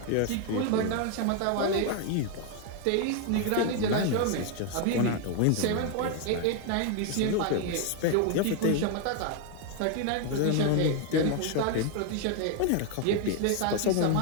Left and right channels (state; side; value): different; both; correlation 0.01